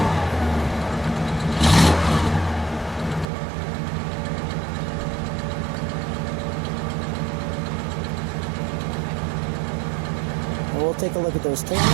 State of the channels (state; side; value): drops out; left; at 3.2 s